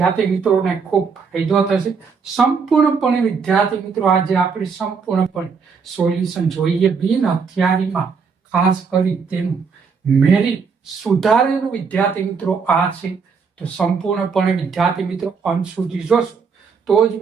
મિત્રોને ખૂબ ફાયદો થશે? સંપૂર્ણપણે વિદ્યાર્થી મિત્રો આજે આપણે સંપૂર્ણપણે સોલ્યુશન જોઈએ. બિન હથિયારીમાં ખાસ કરી તેનું મેરિટ સુધારેલું વિદ્યાર્થી મિત્રો આ છે. તો સંપૂર્ણપણે વિદ્યાર્થી મિત્રો અંત સુધી જોશો તો જ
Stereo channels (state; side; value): quieter; left; 5.5 dB